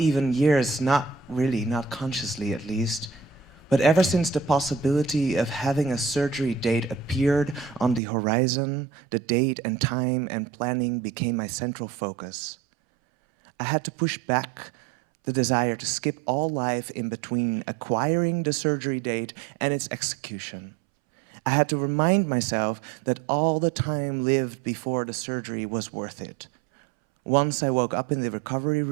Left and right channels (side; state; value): left; drops out; at 8.0 s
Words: years, not really, not consciously at least, but ever since the possibility of having a surgery date appeared on the horizon, the date and time and planning became my central focus. I had to push back the desire to skip all life in between acquiring the surgery date and its execution. I had to remind myself that all the time lived before the surgery was worth it. Once I woke up in the recovery